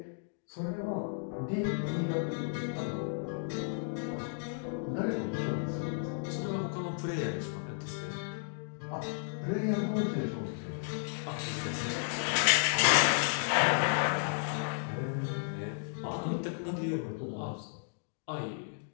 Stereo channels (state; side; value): silent; right; digital silence